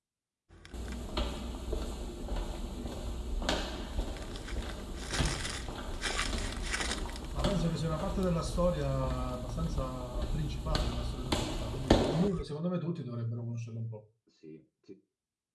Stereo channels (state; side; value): identical; both; correlation 1.00